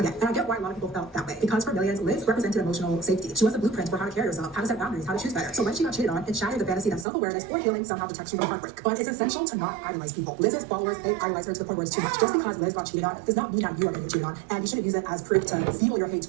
And I get why a lot of people felt that way. Because for millions, Liz represented emotional safety. She was a blueprint for how to carry yourself, how to set boundaries, how to choose better. So when she got cheated on, it shattered the fantasy that self-awareness or healing somehow protects you from heartbreak. But it's essential to not idolize people. Liz's followers, they idolize her to the point where it's too much. Just because Liz got cheated on does not mean that you are getting cheated on. And you shouldn't use it as proof to fuel your hate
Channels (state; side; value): drops out; left; at 7.1 s